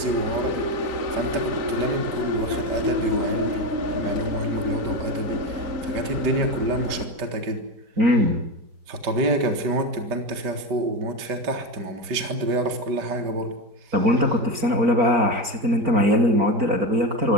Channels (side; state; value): left; late; 5.1 ms